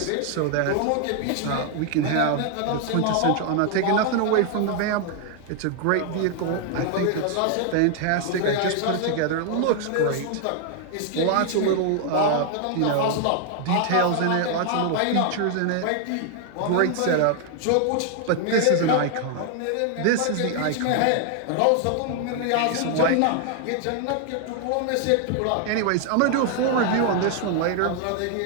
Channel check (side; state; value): both; different; correlation 0.00